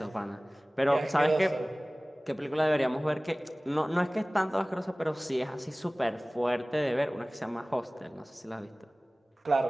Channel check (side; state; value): both; normal; correlation 0.98